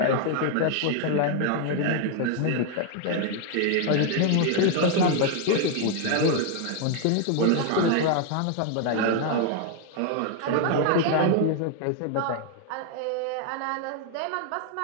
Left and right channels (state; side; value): different; both; correlation 0.00